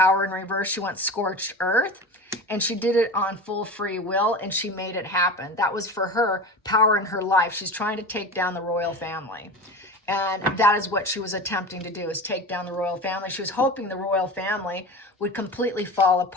in reverse, she went scorched earth, and she did it on full free will, and she made it happen. That was for her power in her life. She's trying to take down the royal family. And that is what she was attempting to do, is take down the royal family. She was hoping the royal family would completely fall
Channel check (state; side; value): normal; both; correlation 0.30